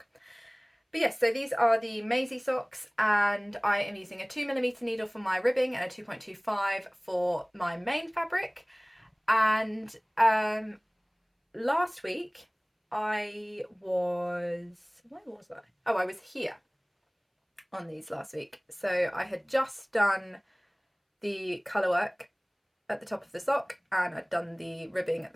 But yes, so these are the Mazie socks, and I am using a 2mm needle for my ribbing and a 2.25 for my main fabric. And last week I was, where was I? Oh, I was here on these last week. So I had just done the colour work at the top of the sock, and I'd done the ribbing at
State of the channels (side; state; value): both; identical; correlation 1.00